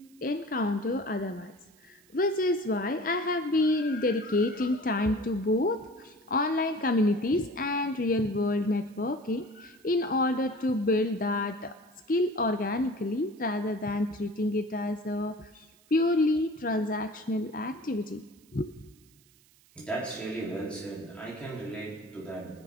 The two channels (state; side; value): noise; right; hiss, 30 dB below the sound